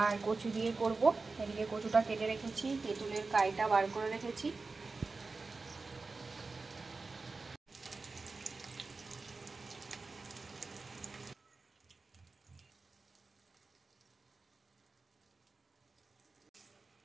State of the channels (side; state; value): left; quieter; 3.9 dB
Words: কচু দিয়ে করব। এদিকে কচুটা কেটে রেখেছি, তেঁতুলের কাইটা বার করে রেখেছি।